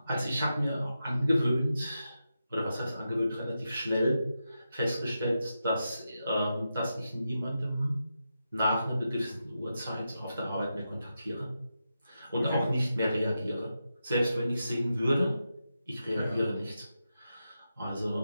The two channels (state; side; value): inverted; both; correlation -0.88